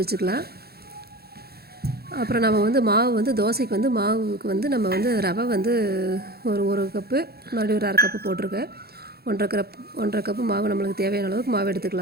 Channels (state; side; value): late; left; 0.46 ms